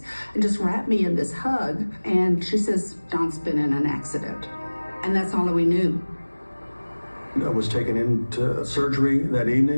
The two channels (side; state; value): both; inverted; correlation -1.00